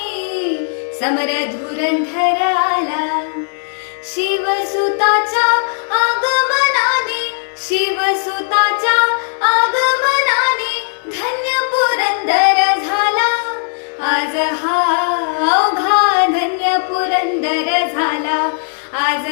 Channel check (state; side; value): silent; right; 60 dB below the other